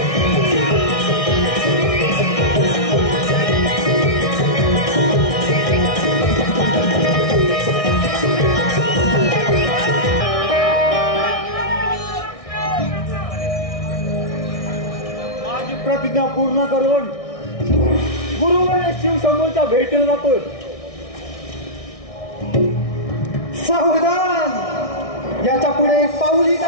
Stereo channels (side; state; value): right; late; 1.6 ms